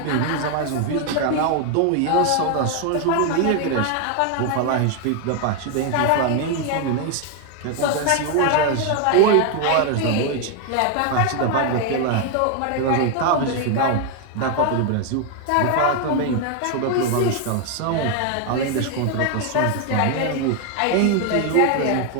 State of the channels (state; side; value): different; both; correlation 0.01